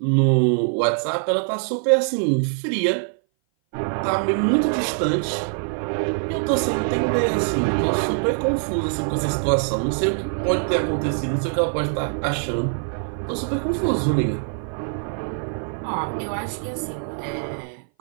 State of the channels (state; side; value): silent; left; 58 dB below the other